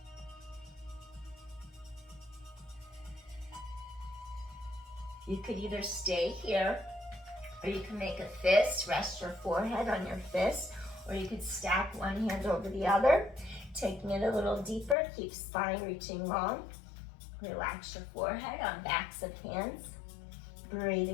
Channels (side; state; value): right; drops out; at 15.0 s